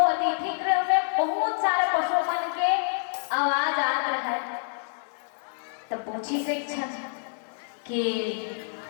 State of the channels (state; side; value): silent; right; 60 dB below the other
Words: अतिथि गृह में बहुत सारे पशु मन के आवाज आ रहा है तब पूछी से कि